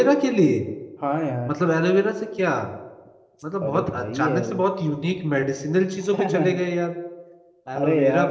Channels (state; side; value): identical; both; correlation 1.00